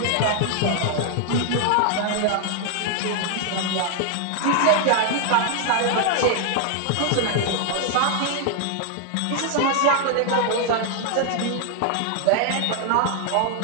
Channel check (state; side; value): different; both; correlation 0.00